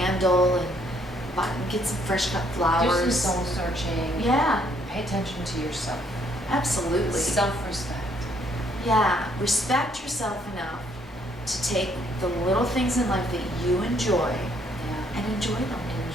and get some fresh cut flowers. Do some soul searching. Yeah. And pay attention to yourself. Absolutely. Self-respect. Yeah. Respect yourself enough to take the little things in life that you enjoy and enjoy them.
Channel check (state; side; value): normal; both; correlation 0.68